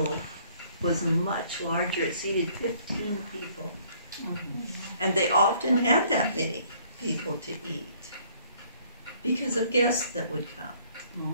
was much larger. It seated 15 people. And they often had that many people to eat because of guests that would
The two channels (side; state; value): both; inverted; correlation -0.61